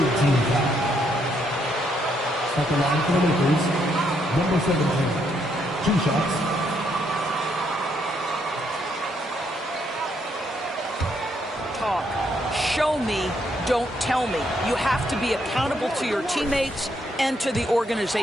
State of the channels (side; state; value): both; normal; correlation 0.74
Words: team foul. At the line for the Lakers, number 17. 2 shots. talk. Show me, don't tell me. You have to be accountable to your teammates and to the